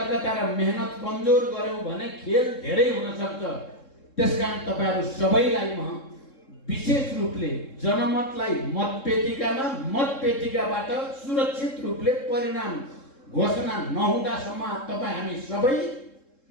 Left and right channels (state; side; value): late; right; 3.7 ms